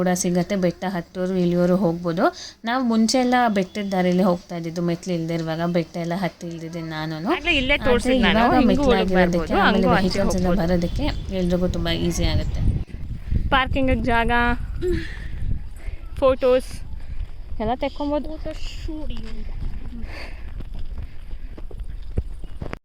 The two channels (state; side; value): identical; both; correlation 1.00